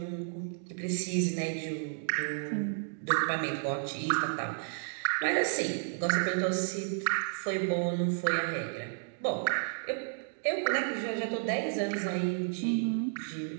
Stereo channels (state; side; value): silent; left; digital silence